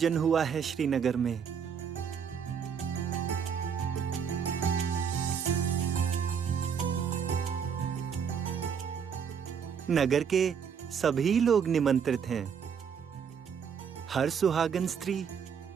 हुआ है श्रीनगर में। नगर के सभी लोग निमंत्रित हैं। हर सुहागन स्त्री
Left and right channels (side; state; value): left; quieter; 7.1 dB